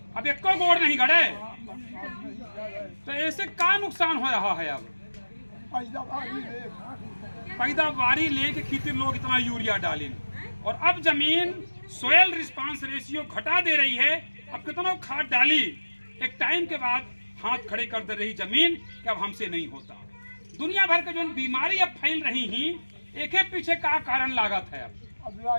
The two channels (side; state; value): both; inverted; correlation -1.00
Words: एक को गोड़ नहीं गड़े तो ऐसे का नुकसान हो रहा है? अब पैदावारी लेके खेती लोग इतना यूरिया डालें, और अब जमीन सोयल रिस्पांस रेशियो घटा दे रही है। अब कितना खाद डाली, एक टाइम के बाद हाथ खड़े कर दे रही जमीन कि अब हमसे नहीं होता। दुनिया भर के जो बीमारी अब फैल रही ही, एक एक पीछे का कारण लागत है। अब